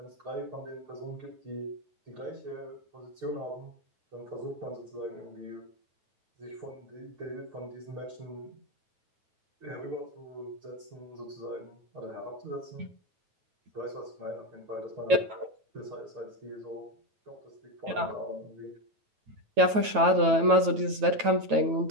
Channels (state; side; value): late; left; 9.2 ms